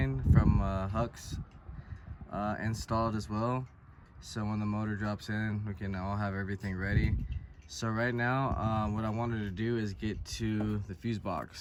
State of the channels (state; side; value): identical; both; correlation 1.00